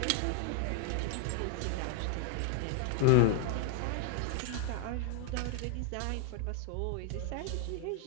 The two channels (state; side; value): different; both; correlation 0.00